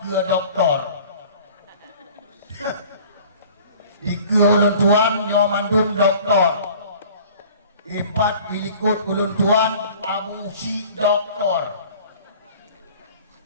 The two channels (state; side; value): inverted; both; correlation -0.47